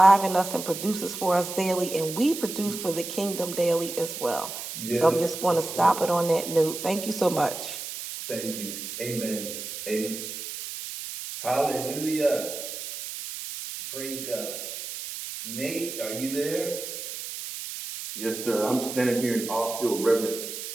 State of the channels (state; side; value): noise; right; hiss, 8 dB below the sound